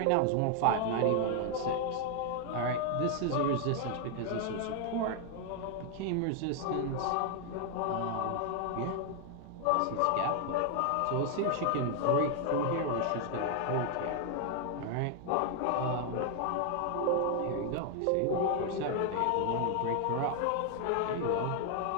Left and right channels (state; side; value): different; both; correlation 0.00